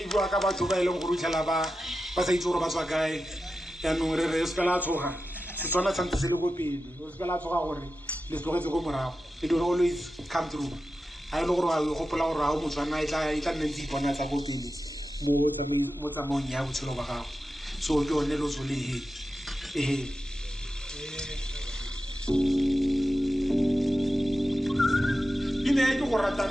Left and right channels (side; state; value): both; normal; correlation 0.92